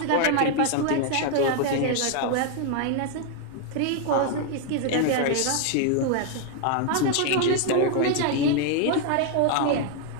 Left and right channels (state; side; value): different; both; correlation 0.00